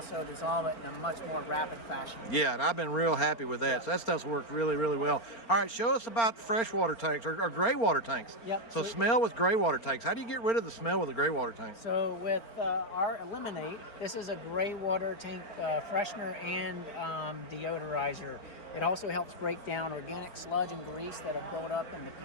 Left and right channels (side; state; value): right; late; 4.4 ms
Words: dissolve it in a much more rapid fashion. Yeah, and I've been real happy with that. Yeah. So that stuff's worked really, really well. All right, show us about freshwater tanks or gray water tanks. Yep. So smell with gray water tanks. How do you get rid of the smell with a gray water tank? So with our Eliminate, this is a gray water tank freshener and deodorizer. It also helps break down organic sludge and grease that have built up in the